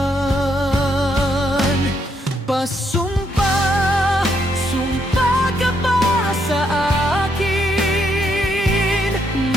Pasumpa, sumpa ka ba sa akin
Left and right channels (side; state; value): both; normal; correlation 0.75